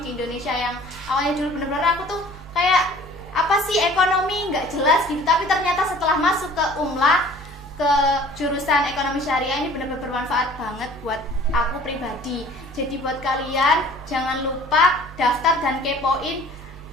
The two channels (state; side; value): normal; both; correlation 0.49